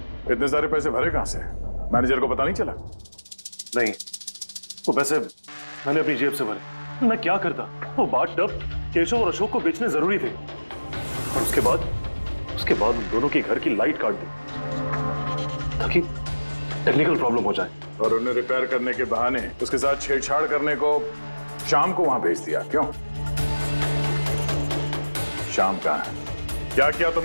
इतने सारे पैसे भरे कहां से? मैनेजर को पता नहीं चला? नहीं, वो पैसे मैंने अपनी जेब से भरे। मैं क्या करता? वो बाथटब केशव और अशोक को बेचने जरूरी थे और उसके बाद उन दोनों के घर की लाइट काट दी ताकि टेक्निकल प्रॉब्लम हो जाए। और उन्हें रिपेयर करने के बहाने उसके साथ छेड़छाड़ करने को शाम को वहां भेज दिया। क्यों? शाम कहां है? क्या किया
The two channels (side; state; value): both; inverted; correlation -1.00